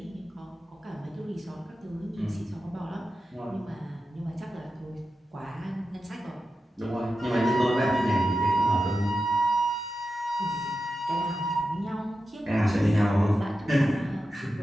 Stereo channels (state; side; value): normal; both; correlation 0.91